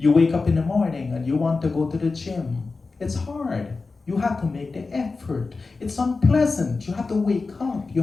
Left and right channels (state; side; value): quieter; right; 4.0 dB